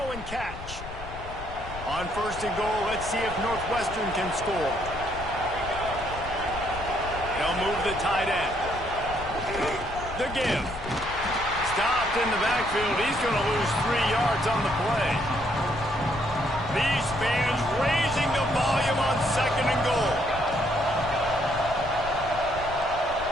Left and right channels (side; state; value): left; noise; rumble, 12 dB below the sound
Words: and catch. On first and goal, let's see if Northwestern can score. They'll move the tight end. The give. Stopped in the backfield. He's going to lose 3 yards on the play. These fans raising the volume on second and goal.